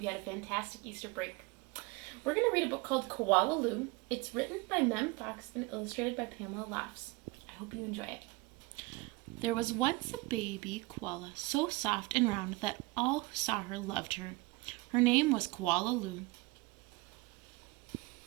you had a fantastic Easter break. We're going to read a book called Koala Lou. It's written by Mem Fox and illustrated by Pamela Laughs. I hope you enjoy it. There was once a baby koala so soft and round that all who saw her loved her. Her name was Koala Lou.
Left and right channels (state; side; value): quieter; left; 22.9 dB